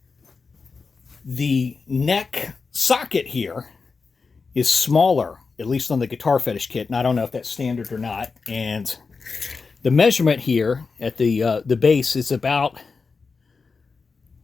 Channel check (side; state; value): right; quieter; 4.7 dB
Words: The neck socket here is smaller, at least on the Guitar Fetish kit, and I don't know if that's standard or not. And the measurement here at the base is about,